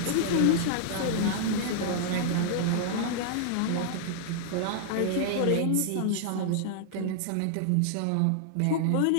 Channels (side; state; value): both; different; correlation -0.01